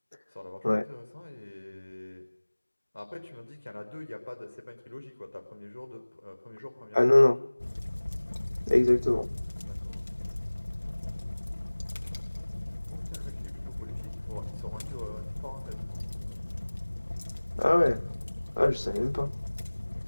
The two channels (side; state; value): both; inverted; correlation -1.00